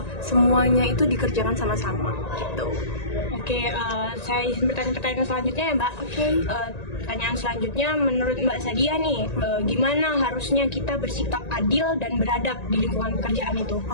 semuanya itu dikerjakan sama-sama gitu. Oke, saya izin bertanya pertanyaan selanjutnya ya Mbak. Pertanyaan selanjutnya menurut Mbak Sadia nih, gimana harusnya kita bersikap adil dan beradab di lingkungan pekerjaan itu?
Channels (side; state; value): right; late; 1.9 ms